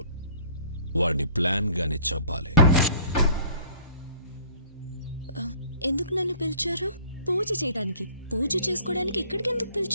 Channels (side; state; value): both; inverted; correlation -0.52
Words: వాడిని ప్లాన్ గానే చంపాలి. ఎందుకు నన్ను పిలిచారు? పూజ చేయడానికి. పూజ చేసుకోవడానికి ఇక్కడికి ఎందుకు